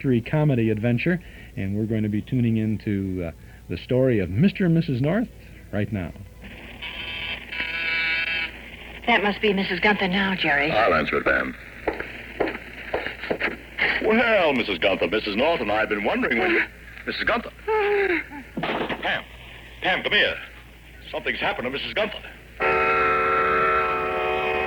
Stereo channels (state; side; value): identical; both; correlation 1.00